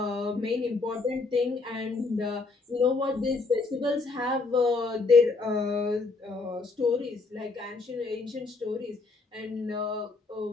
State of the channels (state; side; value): quieter; right; 3.9 dB